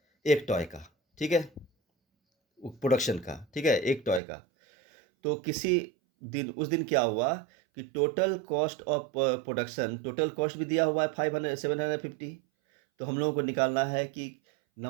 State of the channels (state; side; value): drops out; left; at 4.2 s